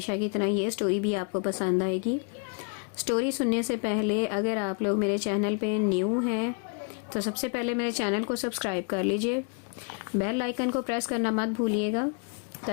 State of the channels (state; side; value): quieter; right; 37.4 dB